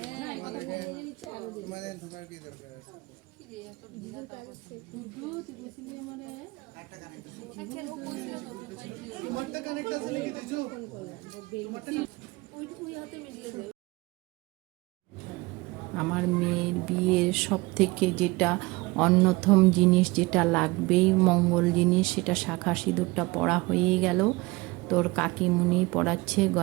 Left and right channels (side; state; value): left; quieter; 23.1 dB